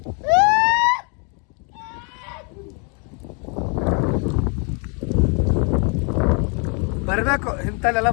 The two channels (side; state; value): right; quieter; 36.4 dB